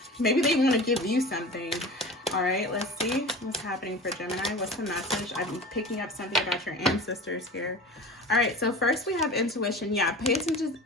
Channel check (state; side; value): normal; both; correlation 0.35